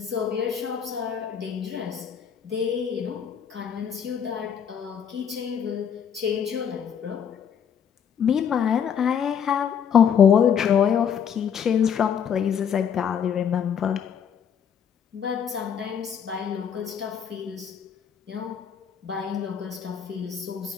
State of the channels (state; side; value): quieter; right; 7.9 dB